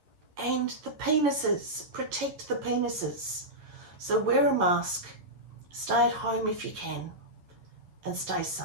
and the penises. Protect the penises. So wear a mask, stay at home if you can, and stay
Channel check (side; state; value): left; late; 11 ms